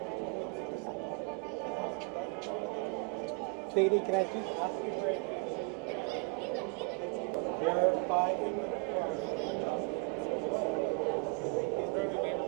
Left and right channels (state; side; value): quieter; left; 33.5 dB